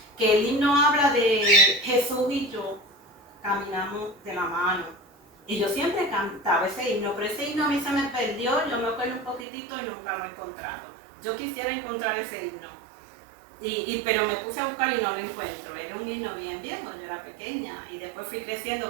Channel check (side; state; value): left; drops out; at 9.5 s